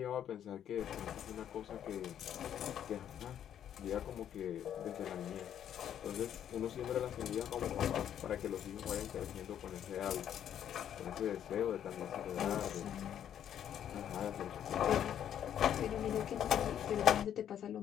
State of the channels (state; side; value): quieter; right; 9.9 dB